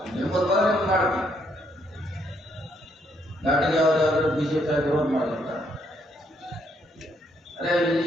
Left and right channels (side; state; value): both; normal; correlation 0.72